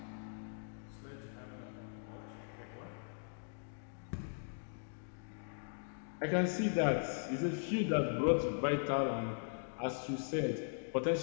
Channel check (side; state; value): right; silent; digital silence